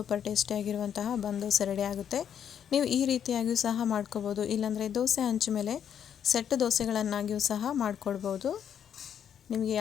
ಟೇಸ್ಟಿಯಾಗಿರುವಂತಹ ದೋಸೆ ರೆಡಿ ಆಗುತ್ತೆ. ನೀವು ಈ ರೀತಿಯಾಗಿಯೂ ಸಹ ಮಾಡ್ಕೋಬೋದು, ಇಲ್ಲಾಂದರೆ ದೋಸೆ ಹಂಚು ಮೇಲೆ ಸೆಟ್ ದೋಸೆಗಳನ್ನಾಗಿಯೂ ಸಹ ಮಾಡಿಕೊಡ್ಬೋದು. ನಿಮಗೆ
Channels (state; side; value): quieter; right; 8.7 dB